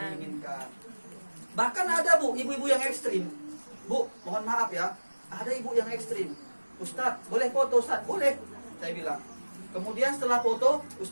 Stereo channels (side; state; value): both; inverted; correlation -1.00